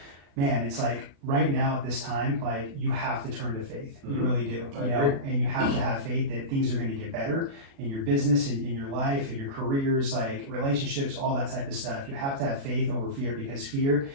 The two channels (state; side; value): late; left; 36 ms